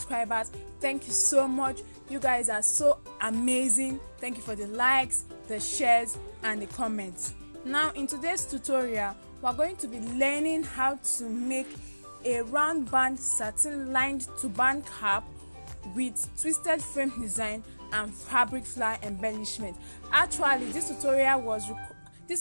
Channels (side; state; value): both; inverted; correlation -1.00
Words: thank you so much. You guys are so amazing. Thank you for the likes, the shares and the comments. Now in today's tutorial, we're going to be learning how to make a round band satin lined turban cap with twisted frame design and fabric flower embellishment. Actually, this tutorial was